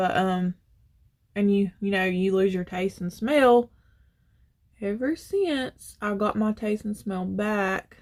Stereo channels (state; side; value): identical; both; correlation 1.00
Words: and you know, you lose your taste and smell. Ever since I got my taste and smell back,